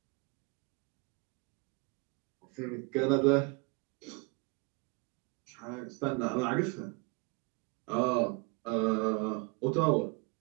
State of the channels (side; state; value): left; quieter; 30.6 dB